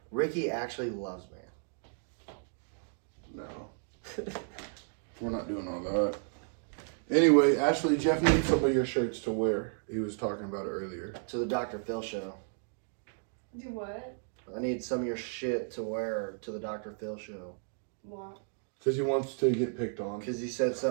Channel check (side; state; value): left; silent; 56 dB below the other